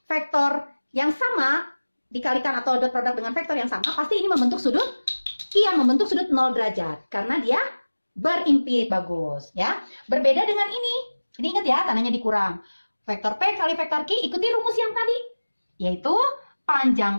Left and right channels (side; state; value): both; inverted; correlation -1.00